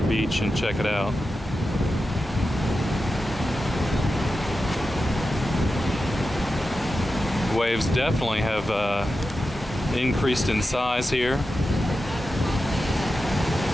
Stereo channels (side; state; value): both; normal; correlation 0.91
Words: beach and check it out. Waves definitely have increased in size here.